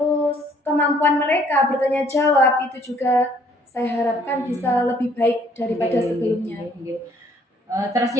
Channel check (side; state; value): both; normal; correlation 0.62